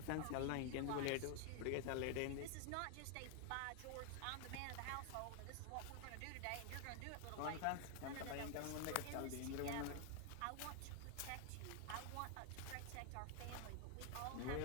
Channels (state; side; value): different; both; correlation 0.01